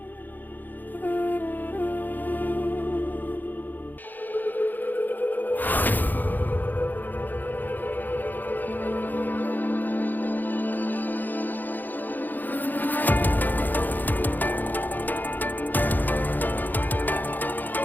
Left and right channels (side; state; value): right; late; 0.087 ms